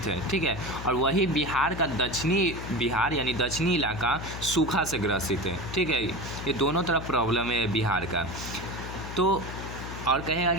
है, ठीक है। और वही बिहार का दक्षिणी बिहार यानी दक्षिणी इलाका सूखा से ग्रसित है, ठीक है। ये दोनों तरफ प्रॉब्लम है बिहार का। तो और कहेगा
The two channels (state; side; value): noise; left; hum, 9 dB below the sound